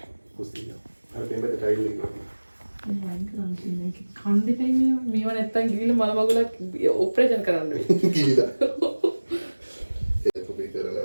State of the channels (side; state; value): both; inverted; correlation -1.00